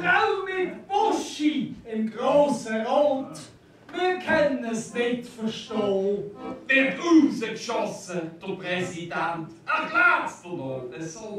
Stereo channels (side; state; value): both; identical; correlation 1.00